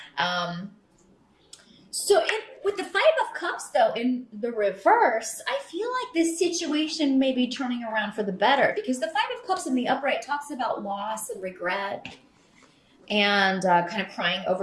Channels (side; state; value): both; identical; correlation 1.00